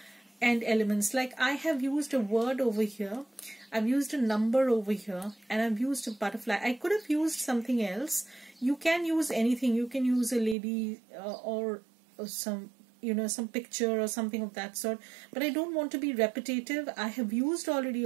and elements. Like I have used a word over here, I've used a number over here, and I've used a butterfly. I could have used something else. You can use anything. You can use a lady or some, you know, some picture or something of that sort, but I don't want to be repetitive. I have used already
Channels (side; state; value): left; drops out; at 10.6 s